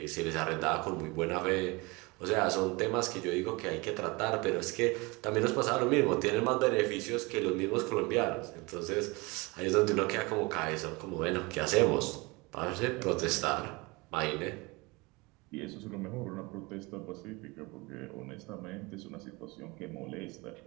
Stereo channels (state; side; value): quieter; left; 25.4 dB